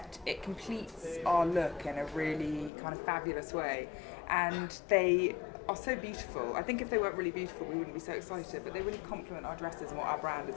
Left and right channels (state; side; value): drops out; right; at 2.7 s